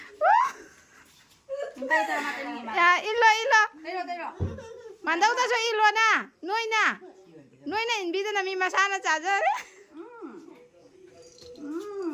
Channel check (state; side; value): identical; both; correlation 1.00